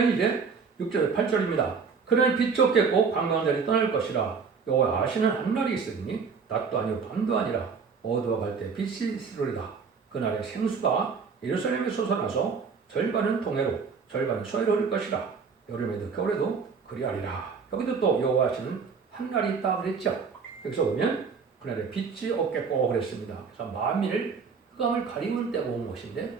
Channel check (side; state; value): left; quieter; 5.5 dB